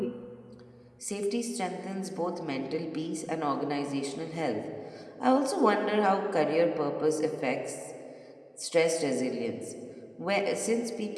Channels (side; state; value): both; identical; correlation 1.00